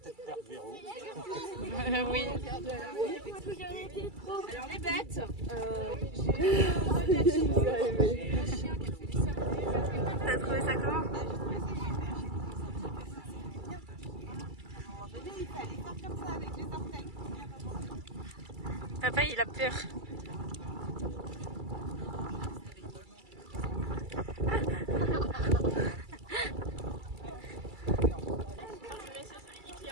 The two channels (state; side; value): late; left; 2.3 ms